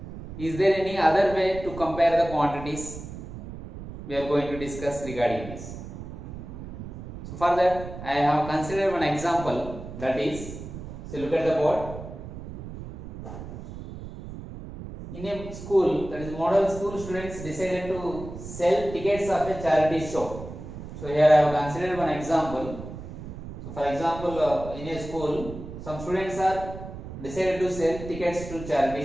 is there any other way to compare the quantities? We are going to discuss regarding this. So for that, I have considered one example, that is, so look at the board. In a school, that is model school, students decided to sell tickets of a charity show. So here I have considered one example. So for example, in a school, some students are decided to sell tickets to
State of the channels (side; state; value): right; noise; rumble, 11 dB below the sound